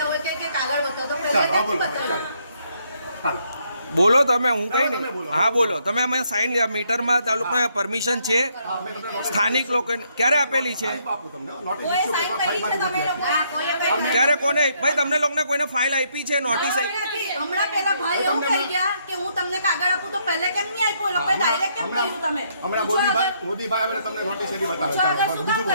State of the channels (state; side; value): inverted; both; correlation -0.72